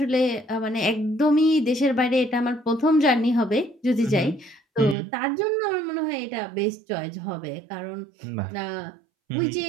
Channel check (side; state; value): left; drops out; at 5.0 s